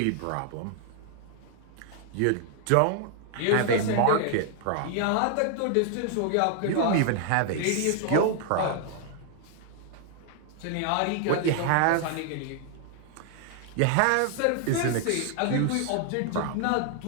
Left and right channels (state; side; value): different; both; correlation 0.00